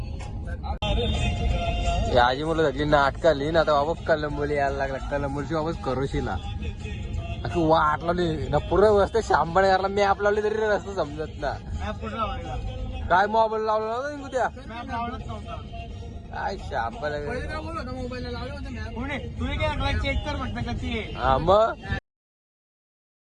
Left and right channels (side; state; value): both; identical; correlation 1.00